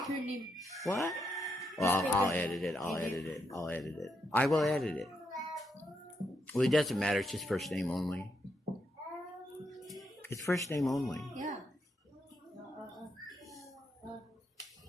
her name. What? Well, I'll edit it. I'll edit it. I'll edit it. I will edit it. Well, it doesn't matter. It's just first name only. It's first name only. Yeah.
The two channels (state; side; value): normal; both; correlation 0.81